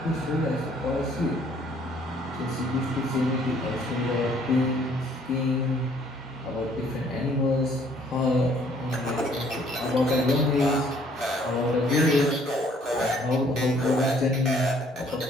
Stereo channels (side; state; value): both; normal; correlation 0.61